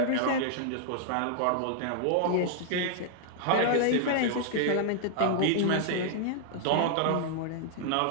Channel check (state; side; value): different; both; correlation -0.01